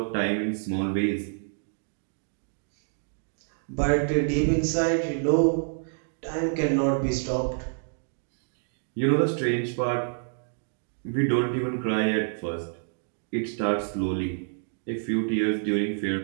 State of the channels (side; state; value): left; silent; digital silence